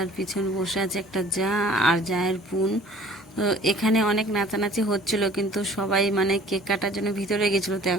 আর পিছনে বসে আছে একটা যা আর জায়ের বোন। তো এখানে অনেক নাচানাচি হচ্ছিল, কিন্তু সবাই মানে কেক কাটার জন্য ভিতরে গেছিলো। তো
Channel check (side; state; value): both; normal; correlation 0.50